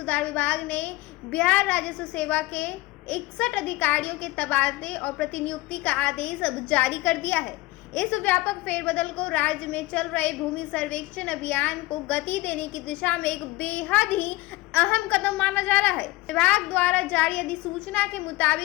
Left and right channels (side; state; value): right; quieter; 20.1 dB